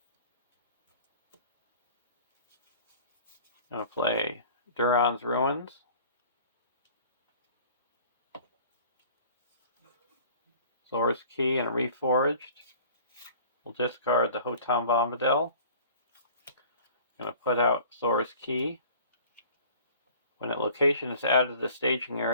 I'm going to play Duran's Ruins, Thor's Key, and Reforged. We'll discard the Hotam Bombadil. I'm going to put out Thor's Key. When a location is added to the staging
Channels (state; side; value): inverted; both; correlation -0.47